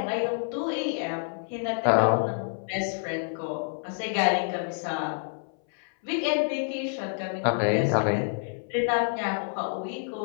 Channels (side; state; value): right; silent; 59 dB below the other